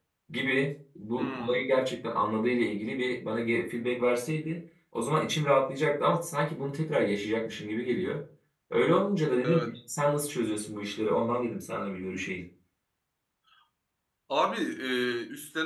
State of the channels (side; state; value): both; identical; correlation 1.00